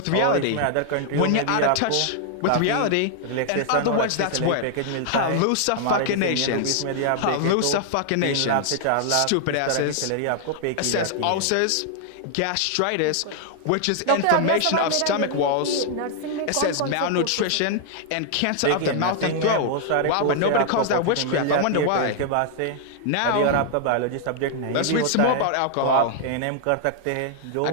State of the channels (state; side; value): different; both; correlation 0.00